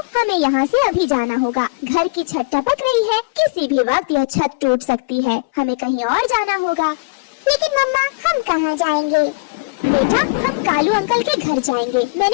हमें यहाँ से अभी जाना होगा। घर की छत टपक रही है, किसी भी वक्त यह छत टूट सकती है। हमें कहीं और जाना होगा। लेकिन मम्मा, हम कहाँ जाएंगे? बेटा हम कालू अंकल के घर जाएंगे।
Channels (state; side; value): quieter; right; 30.7 dB